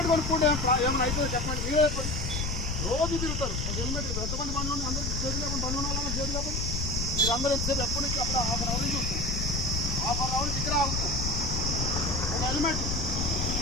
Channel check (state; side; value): noise; left; rumble, 2 dB below the sound